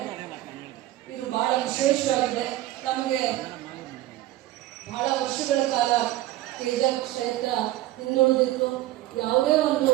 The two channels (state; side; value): quieter; left; 15.5 dB